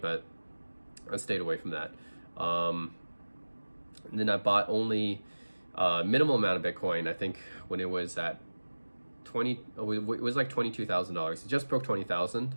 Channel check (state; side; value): inverted; both; correlation -1.00